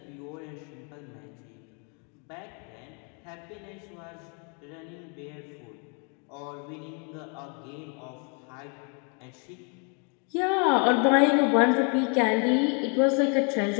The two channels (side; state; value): right; quieter; 37.2 dB